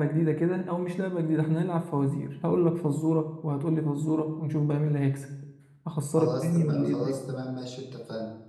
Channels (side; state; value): both; identical; correlation 1.00